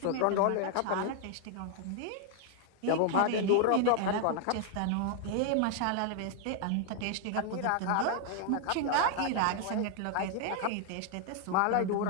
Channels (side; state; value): both; different; correlation 0.00